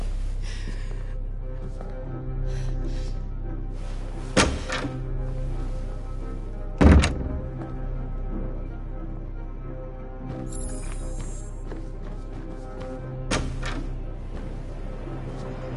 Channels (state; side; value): identical; both; correlation 1.00